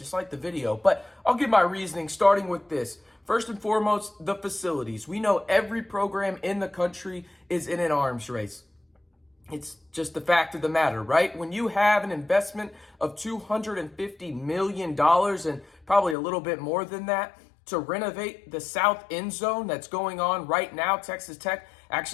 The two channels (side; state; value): right; drops out; at 16.2 s